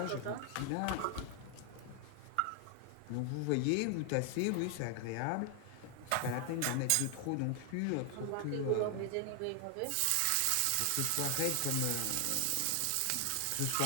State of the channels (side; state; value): both; different; correlation 0.00